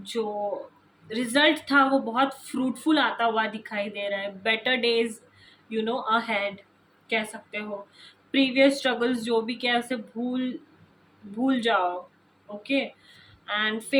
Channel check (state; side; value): identical; both; correlation 1.00